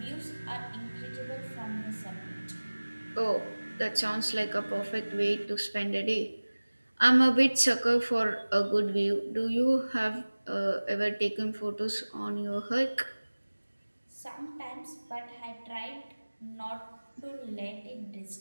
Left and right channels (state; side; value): inverted; both; correlation -1.00